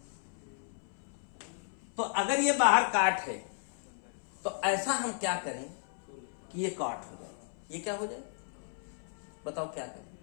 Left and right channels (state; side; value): silent; right; 55 dB below the other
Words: तो अगर ये बाहर काट है, तो ऐसा हम क्या करें कि ये काट हो जाए। ये क्या हो जाए बताओ, क्या करें?